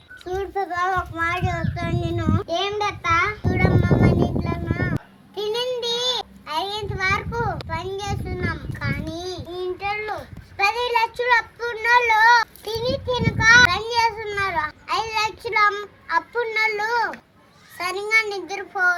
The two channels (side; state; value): both; identical; correlation 1.00